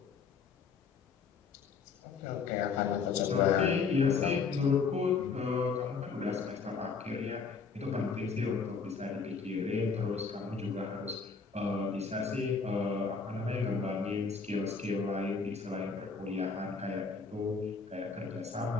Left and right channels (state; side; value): quieter; right; 5.2 dB